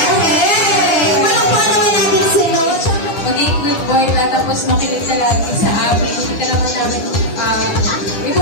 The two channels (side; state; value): right; late; 9.9 ms